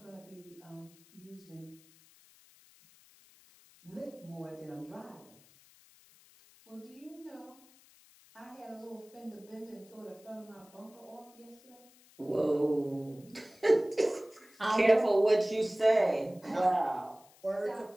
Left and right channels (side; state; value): left; noise; hiss, 26 dB below the sound